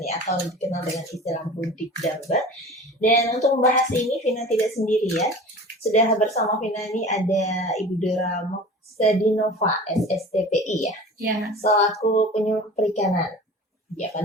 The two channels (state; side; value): normal; both; correlation 0.39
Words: nih, atau dikenal dengan istilah budik damber. Dan untuk membahas ini Vina tidak sendiri ya. Sudah bersama Vina ini ada Ibu Dora Moksadinova, SSTPI ya, Ya, selaku penyuluh perikanan. Ya,